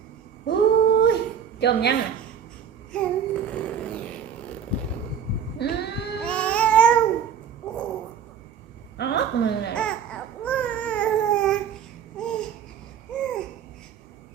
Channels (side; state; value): left; quieter; 8.0 dB